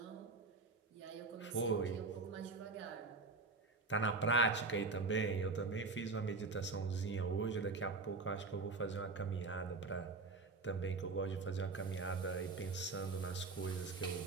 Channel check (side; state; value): left; quieter; 3.8 dB